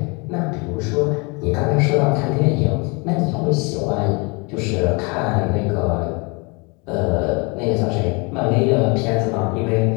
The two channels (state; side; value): quieter; right; 30.0 dB